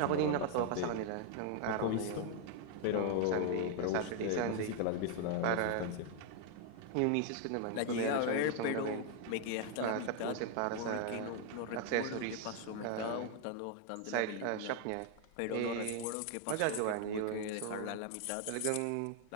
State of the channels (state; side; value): different; both; correlation 0.00